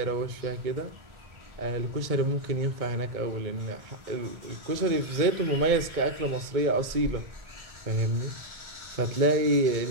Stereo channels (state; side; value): late; left; 2.2 ms